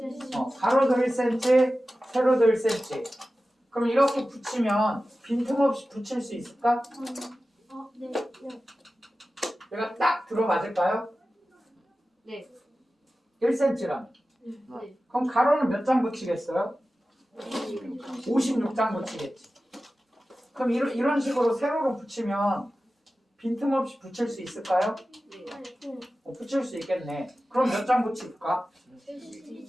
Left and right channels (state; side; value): normal; both; correlation 0.95